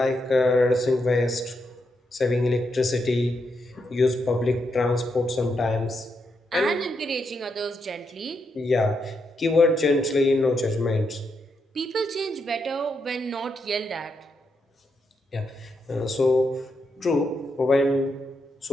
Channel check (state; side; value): normal; both; correlation 0.81